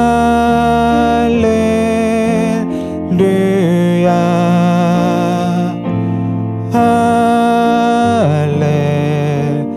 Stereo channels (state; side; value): identical; both; correlation 1.00